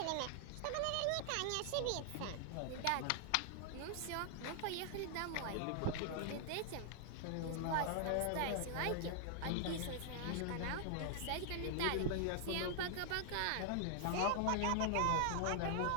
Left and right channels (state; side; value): different; both; correlation 0.00